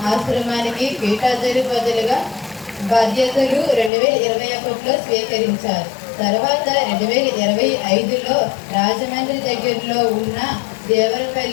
ఆశ్రమానికి పీఠాధిపతులుగా బాధ్యతలు 2021లో స్వీకరించారు. తర్వాత 2025లో రాజమండ్రి దగ్గరలో ఉన్న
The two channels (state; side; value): drops out; right; at 3.9 s